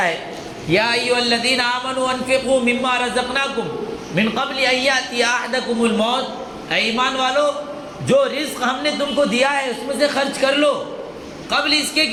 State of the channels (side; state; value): both; identical; correlation 1.00